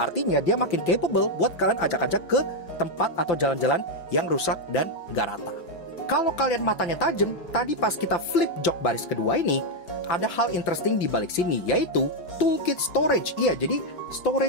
artinya dia makin capable buat kalian ajak-ajak ke tempat atau jalan-jalan yang rusak dan gak rata. Kalau kalian matanya tajam, tadi pas kita flip jok baris kedua ini, ada hal interesting di balik sini, yaitu toolkit storage. Iya, jadi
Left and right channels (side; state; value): right; late; 5.8 ms